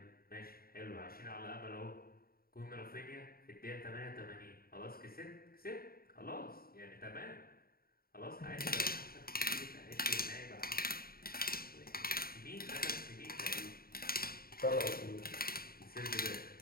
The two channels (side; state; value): right; late; 0.43 ms